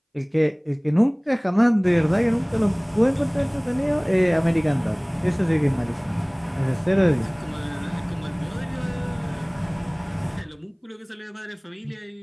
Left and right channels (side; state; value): both; identical; correlation 1.00